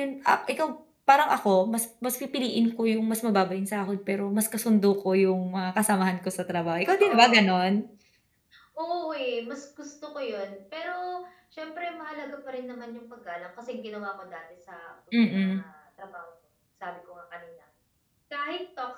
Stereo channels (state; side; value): identical; both; correlation 1.00